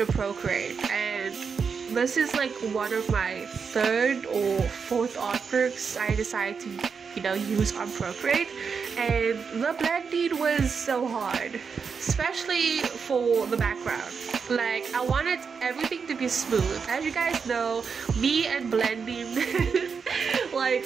Procreate, and this is like one of my third or fourth artworks I decided to use on Procreate, and the blending was so hard, especially for the background. Like I wanted everything to be smooth. As you guys know, me and blending,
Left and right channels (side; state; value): left; quieter; 5.8 dB